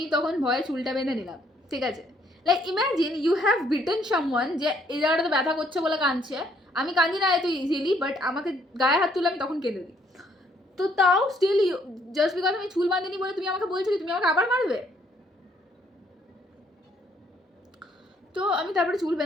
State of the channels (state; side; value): normal; both; correlation 0.67